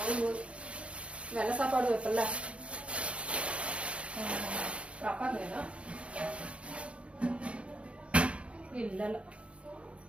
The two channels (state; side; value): late; left; 0.060 ms